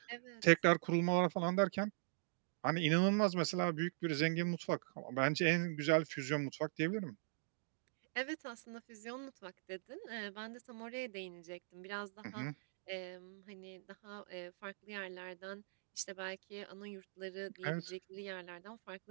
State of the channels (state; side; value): silent; left; digital silence